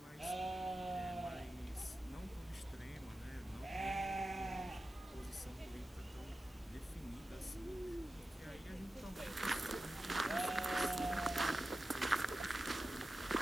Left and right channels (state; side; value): normal; both; correlation 0.93